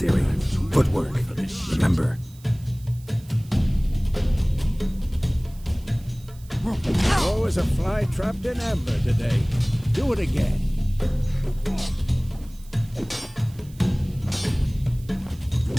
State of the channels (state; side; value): noise; right; hiss, 25 dB below the sound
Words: Footwork. Remember. Oh, as a fly trapped in amber today. Do it again.